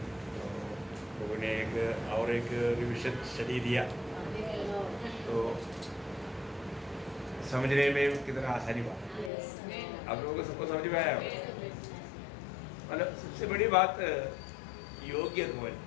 प्रभु ने एक रिविजन स्टडी दिया तो समझने में कितना आसानी बात. आप लोगों को सबको समझ में आया? मतलब सबसे बड़ी बात योग्य होना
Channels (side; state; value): right; drops out; at 9.3 s